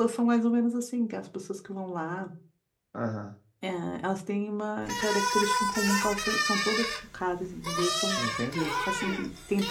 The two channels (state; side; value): identical; both; correlation 1.00